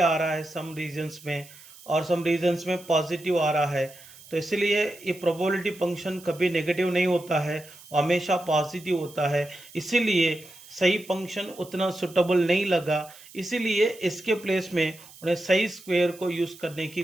रहा है सम रीजन्स में, और सम रीजन्स में पॉजिटिव आ रहा है। तो इसलिए ये प्रोबेबिलिटी फंक्शन कभी नेगेटिव नहीं होता है, हमेशा पॉजिटिव होता है। इसीलिए सही फंक्शन उतना सुटेबल नहीं लगा, इसीलिए इसके प्लेस में उन्हें सही स्क्वायर को यूज़ करने की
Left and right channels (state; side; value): noise; right; hiss, 21 dB below the sound